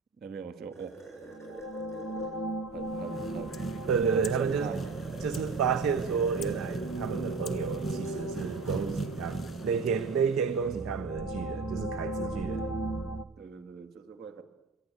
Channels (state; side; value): quieter; left; 4.5 dB